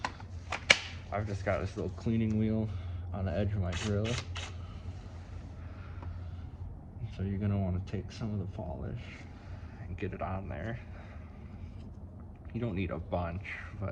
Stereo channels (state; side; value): identical; both; correlation 1.00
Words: I've just got this little cleaning wheel on the edge of my grill. So you're gonna want to take some of the polish and get it on there. You don't need a bunch,